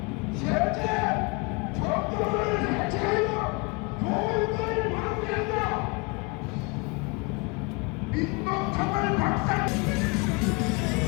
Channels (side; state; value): right; quieter; 28.8 dB